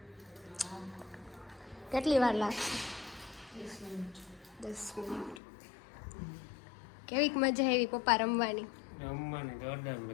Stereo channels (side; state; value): right; drops out; at 5.4 s